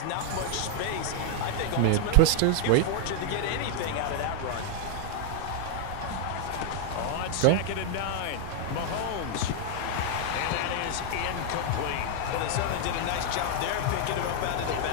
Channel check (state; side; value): different; both; correlation 0.00